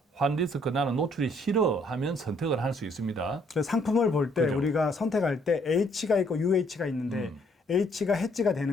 환 리스크 나는 노출이 싫어 하면 선택을 할 수 있습니다. 그래서 상품을 볼 때 그죠. 우리가 선택할 때 H가 있고 UH가 있는데 H가 해지가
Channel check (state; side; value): normal; both; correlation 0.66